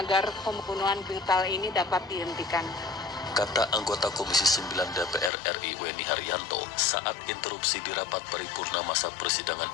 pembunuhan brutal ini dapat dihentikan. Kata anggota Komisi 9 DPR RI Weni Haryanto saat interupsi di rapat paripurna masa persidangan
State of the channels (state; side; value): drops out; right; at 5.3 s